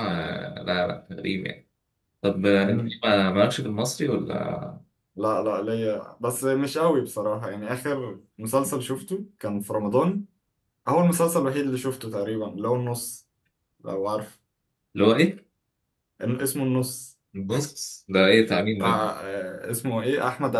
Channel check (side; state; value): both; identical; correlation 1.00